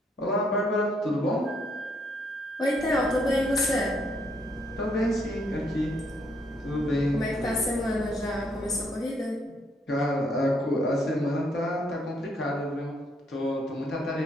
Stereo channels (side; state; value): both; normal; correlation 0.71